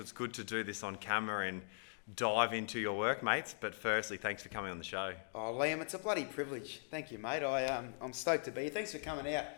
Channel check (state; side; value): silent; right; digital silence